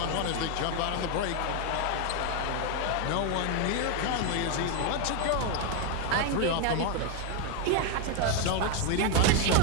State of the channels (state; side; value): different; both; correlation 0.01